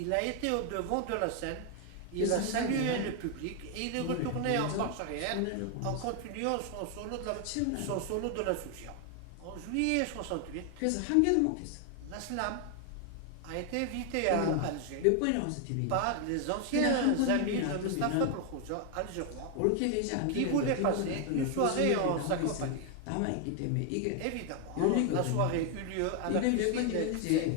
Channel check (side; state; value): both; different; correlation 0.01